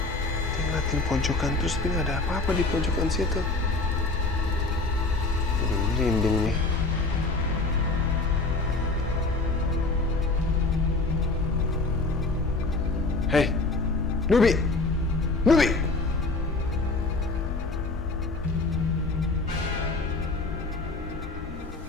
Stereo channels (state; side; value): quieter; right; 3.4 dB